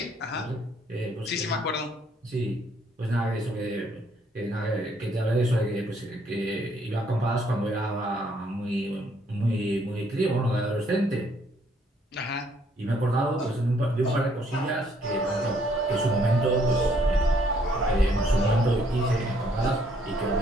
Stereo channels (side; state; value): both; normal; correlation 0.67